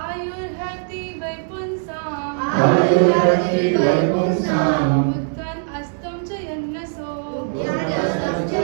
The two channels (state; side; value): silent; left; 64 dB below the other